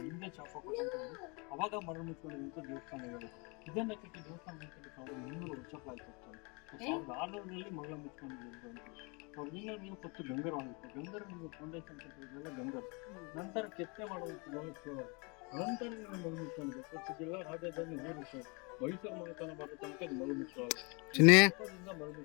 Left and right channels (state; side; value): quieter; right; 30.6 dB